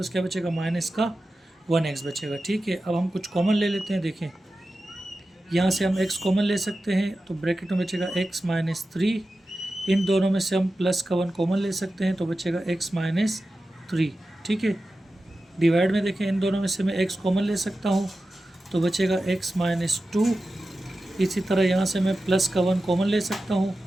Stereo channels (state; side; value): normal; both; correlation 0.93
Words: क्या बचेगा, माइनस का 1x बचेगा। ठीक है, अब हम कुछ कॉमन ले लेते हैं। देखें यहाँ से हम x कॉमन ले सकते हैं, तो ब्रैकेट में बचेगा x -3, इन दोनों में से हम प्लस का 1 कॉमन ले सकते हैं तो बचेगा x -3। ठीक है, डिवाइड में देखें इन दोनों में से मैं x कॉमन ले सकता हूँ तो बचेगा x -2। इसी तरह यहाँ से मैं प्लस का 1 कॉमन ले सकता हूँ